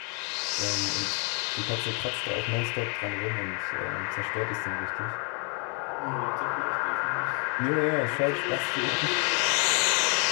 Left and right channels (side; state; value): right; quieter; 35.0 dB